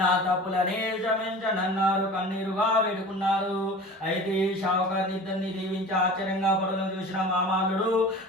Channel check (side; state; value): both; normal; correlation 0.39